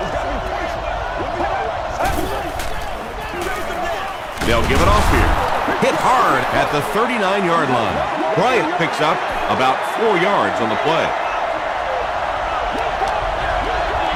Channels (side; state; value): both; identical; correlation 1.00